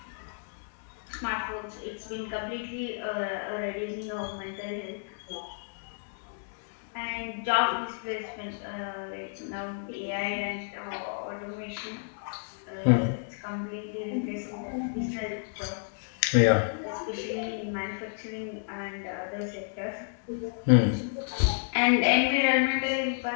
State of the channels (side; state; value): right; silent; digital silence